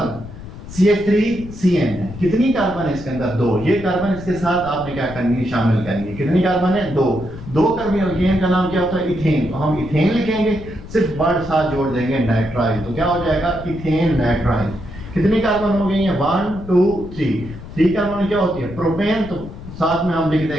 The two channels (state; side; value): noise; left; rumble, 13 dB below the sound